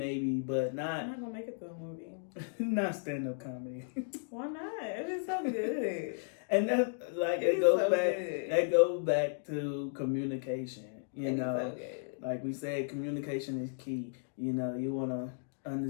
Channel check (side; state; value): right; silent; digital silence